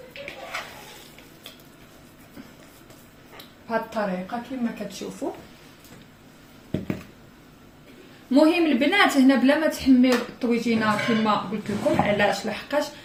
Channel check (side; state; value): both; identical; correlation 1.00